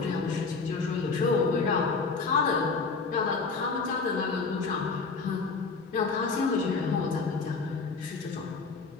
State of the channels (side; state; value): right; quieter; 4.5 dB